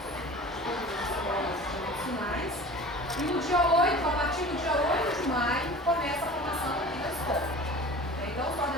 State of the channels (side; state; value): both; normal; correlation 0.39